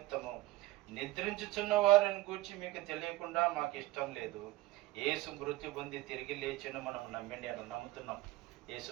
నిద్రించుచున్న వారిని గూర్చి మీకు తెలియకుండా మాకు ఇష్టం లేదు. యేసు మృత్యు పొంది తిరిగి లేచిన మనం నమ్ముతున్నాం. యేసు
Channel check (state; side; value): quieter; left; 17.9 dB